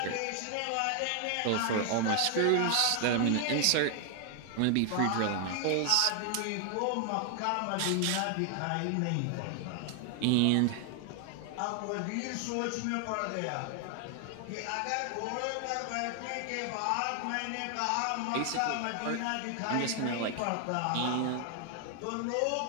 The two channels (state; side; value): different; both; correlation 0.00